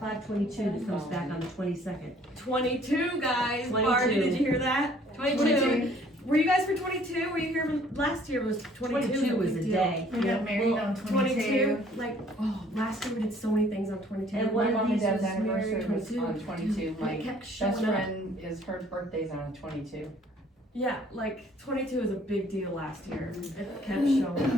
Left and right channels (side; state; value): both; normal; correlation 0.58